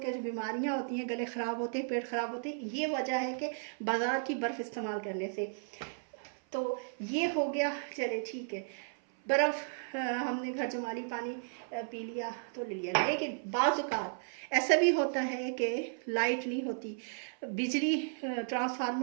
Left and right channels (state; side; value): silent; left; 55 dB below the other